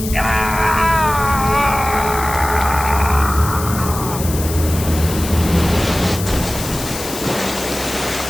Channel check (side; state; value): left; noise; hiss, 9 dB below the sound